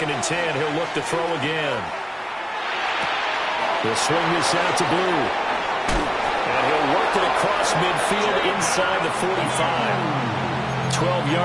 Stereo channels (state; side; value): identical; both; correlation 1.00